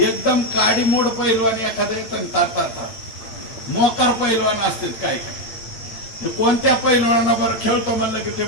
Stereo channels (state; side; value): late; right; 8.9 ms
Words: काडीमोड पहिलवान एखाद्या येतं तातात, मोकार पहिलवान असतील काय काय, कोणत्या पहिलवानाबरोबर खेळतो म्हणलं की ते